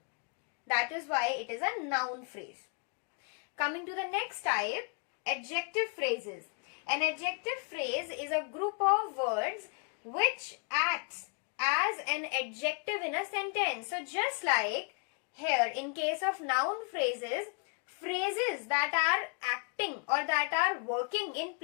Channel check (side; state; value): right; quieter; 38.4 dB